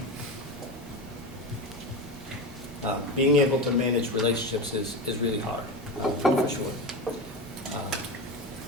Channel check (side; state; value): both; normal; correlation 0.21